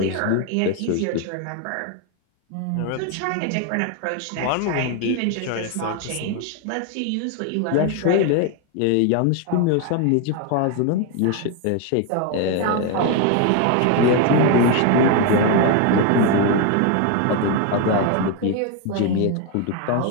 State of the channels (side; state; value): both; different; correlation 0.01